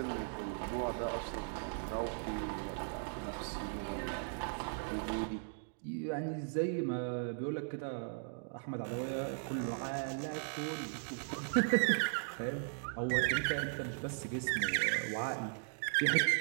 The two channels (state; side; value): silent; left; digital silence